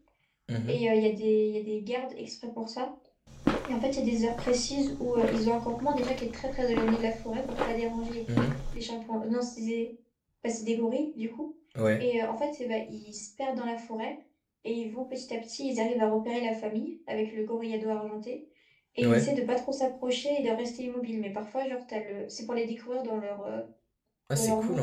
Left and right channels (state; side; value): identical; both; correlation 1.00